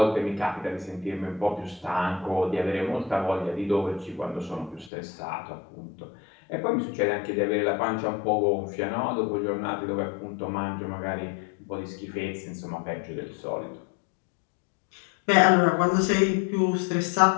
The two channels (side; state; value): right; drops out; at 4.9 s